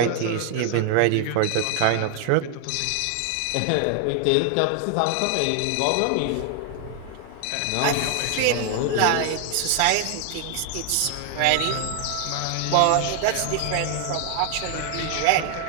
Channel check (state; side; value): different; both; correlation 0.00